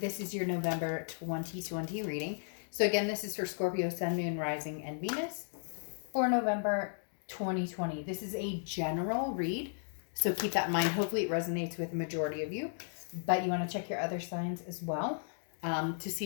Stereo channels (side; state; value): right; silent; digital silence